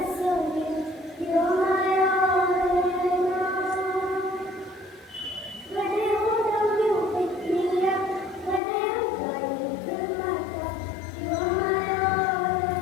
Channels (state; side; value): drops out; right; at 8.6 s